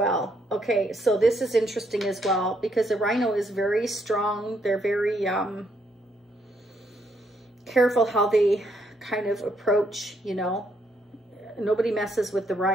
Okay, so this is interesting as well because the rhino is very strong. They're very careful how they kind of approach, you know. Nobody messes with the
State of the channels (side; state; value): both; normal; correlation 0.73